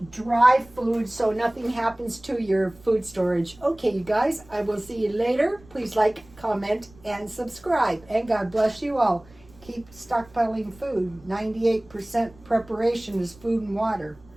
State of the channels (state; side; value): noise; right; rumble, 25 dB below the sound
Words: dry food, so nothing happens to your food storage. Okay, you guys, I will see you later. Please like, comment, and subscribe. And God bless you all. Keep stockpiling food. 98% preparation is food and water.